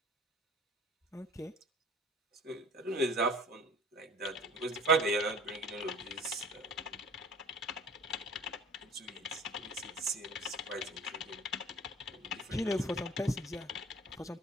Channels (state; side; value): normal; both; correlation 0.45